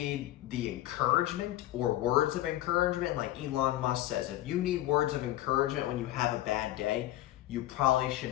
the encouragement or words of encouragement, like Elon Musk says, if you need words of encouragement when you have a bad day, you probably should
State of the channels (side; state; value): right; quieter; 15.1 dB